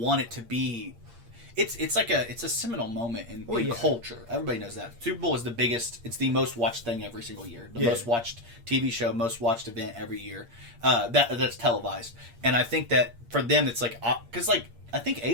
want it to be. It's a seminal moment in culture. Everybody knows that Super Bowl is the biggest. It's the most watched thing every single year. The most watched TV show, most watched event every year. That's televised, and I think that for them it's like because like. I think The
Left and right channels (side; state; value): left; late; 8.6 ms